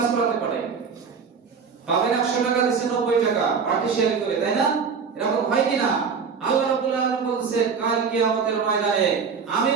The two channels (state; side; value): quieter; left; 5.8 dB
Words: করাতে পারে, পাবেন 100 টাকা দিয়েছে 90 টাকা পার্টিশিয়াল করে, তাই না? এরকম হয় কিনা? আল্লাহ রাব্বুল আলামিন বলেছেন কাল কিয়ামতের ময়দানে আমি